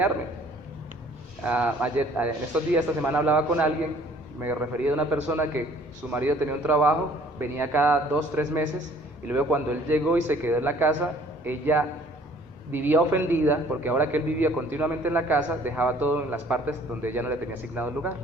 En estos días, esta semana, hablaba con alguien, me refería a una persona que su marido tenía un trabajo, venía cada 2-3 meses, y luego cuando él llegó y se quedó en la casa, ella vivía ofendida, porque ahora que él vivía continuamente en la casa, dejaba todo en las partes donde ella no le tenía asignado el lugar.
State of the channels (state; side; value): normal; both; correlation 0.56